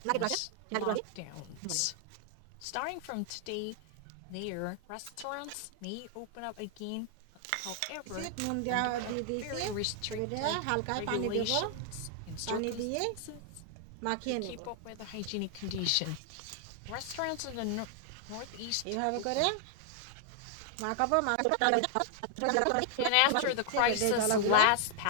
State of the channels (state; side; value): different; both; correlation 0.00